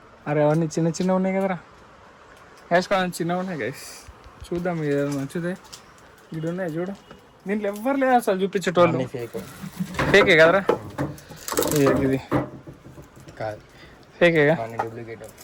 అరే అవన్నీ చిన్న చిన్న ఉన్నాయి కదరా గైస్, కొంచెం చిన్నగా ఉన్నాయి గైస్. చూద్దాం ఏదైనా నచ్చుతే. ఇక్కడ ఉన్నాయి చూడు, దీంట్లో ఎవ్వరు లేదు అసలు చూపించేటోళ్ళు. ఫేకే కదరా ఇది? కాదు ఫేకేగా,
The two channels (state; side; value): identical; both; correlation 1.00